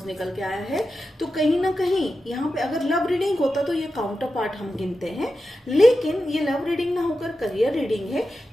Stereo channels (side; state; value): both; normal; correlation 0.91